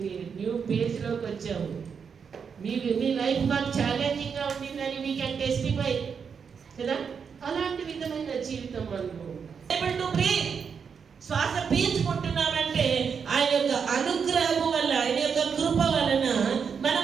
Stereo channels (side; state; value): left; quieter; 6.4 dB